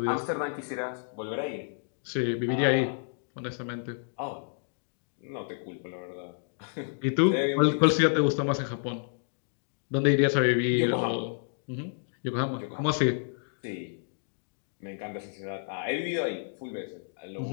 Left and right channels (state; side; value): silent; right; digital silence